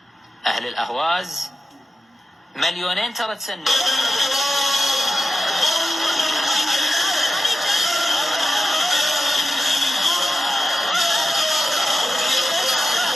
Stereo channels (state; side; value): normal; both; correlation 0.93